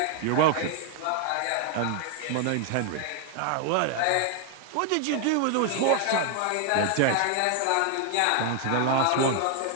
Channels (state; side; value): different; both; correlation 0.00